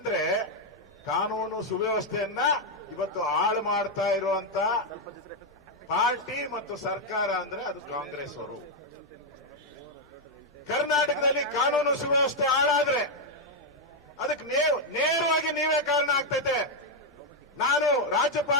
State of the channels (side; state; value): both; normal; correlation 0.00